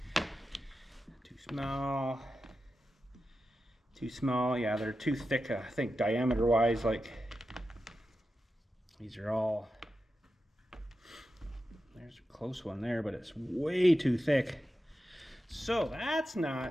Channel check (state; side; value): normal; both; correlation 0.91